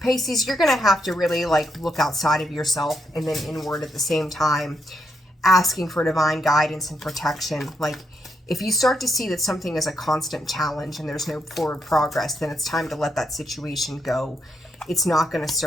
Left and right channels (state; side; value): normal; both; correlation 0.79